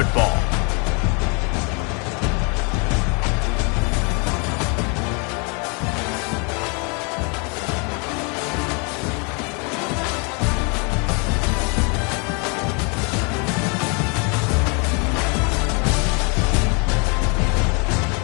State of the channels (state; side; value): quieter; right; 33.9 dB